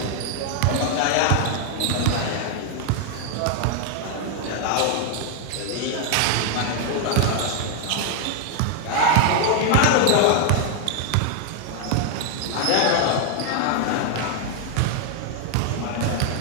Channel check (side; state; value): both; different; correlation 0.00